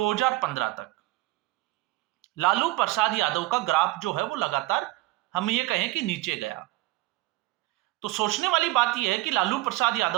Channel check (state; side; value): quieter; left; 19.0 dB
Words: तक लालू प्रसाद यादव का ग्राफ जो है वो लगातार हम ये कहें कि नीचे गया। तो सोचने वाली बात यह है कि लालू प्रसाद